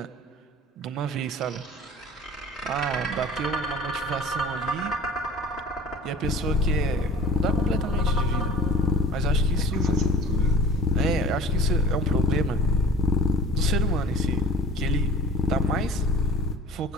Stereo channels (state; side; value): normal; both; correlation 0.43